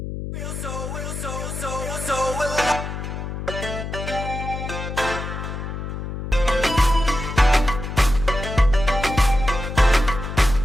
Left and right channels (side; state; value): left; noise; hum, 6 dB below the sound